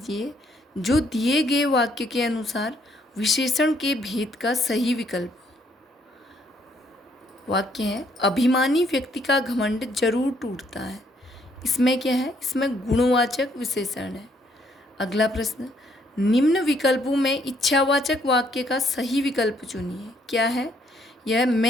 जो दिए गए वाक्य के अनुसार विशेषण के भेद का सही विकल्प हो। वाक्य है, अभिमानी व्यक्ति का घमंड जरूर टूटता है, इसमें क्या है? इसमें गुणवाचक विशेषण है। अगला प्रश्न, निम्न विकल्पों में इच्छावाचक वाक्य का सही विकल्प चुनिए, क्या है? यह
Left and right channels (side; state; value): both; normal; correlation 0.68